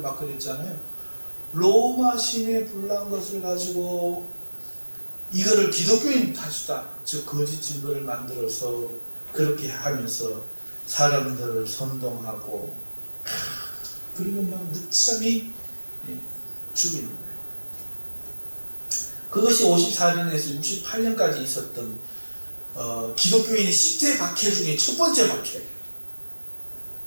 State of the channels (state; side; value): inverted; both; correlation -1.00